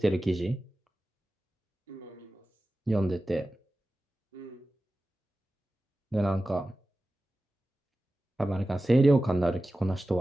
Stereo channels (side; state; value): both; normal; correlation 0.95